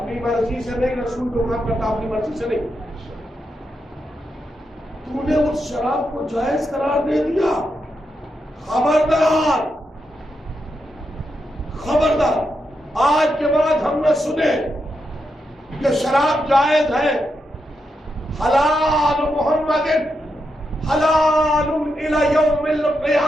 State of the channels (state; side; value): normal; both; correlation 0.84